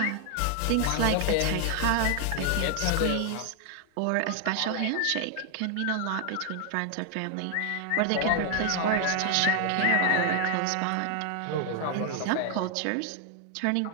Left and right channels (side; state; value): both; different; correlation 0.00